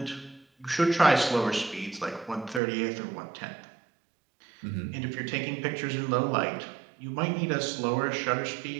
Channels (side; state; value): left; drops out; at 2.6 s